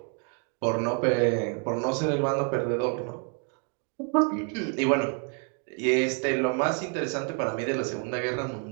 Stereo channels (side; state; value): left; quieter; 37.4 dB